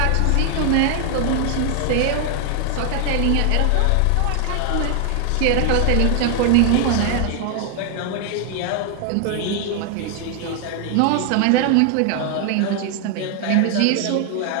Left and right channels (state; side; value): different; both; correlation 0.00